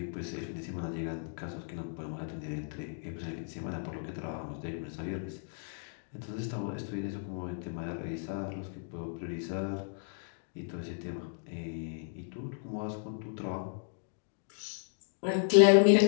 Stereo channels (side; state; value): right; silent; digital silence